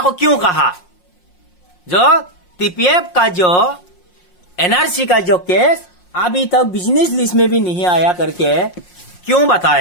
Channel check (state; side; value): late; right; 5.6 ms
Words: क्यों कहा, जो टीपीएफ का जो एनआरसी का जो केस अभी तक बिजनेस लिस्ट में भी नहीं आया करके क्यों